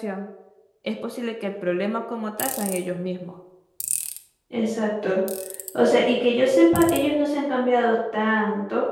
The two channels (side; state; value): both; identical; correlation 1.00